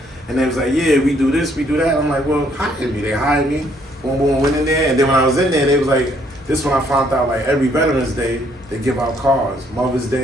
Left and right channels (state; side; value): normal; both; correlation 0.67